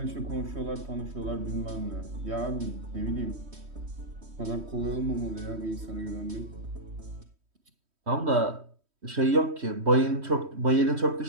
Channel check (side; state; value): left; late; 3.1 ms